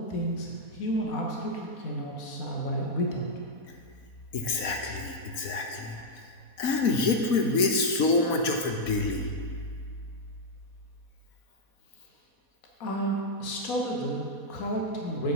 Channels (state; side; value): late; right; 4.2 ms